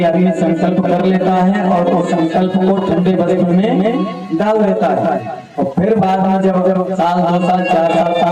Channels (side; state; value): both; identical; correlation 1.00